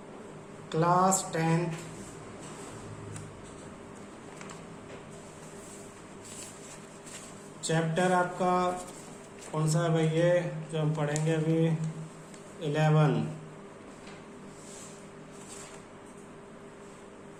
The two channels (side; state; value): both; identical; correlation 1.00